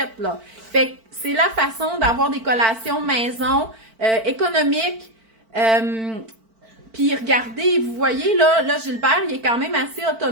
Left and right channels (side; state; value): left; late; 4.5 ms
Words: là. Fait que c'est la façon d'avoir des collations maison, économiques. Puis regardez, vous voyez, là, Gilbert, il est quand même assez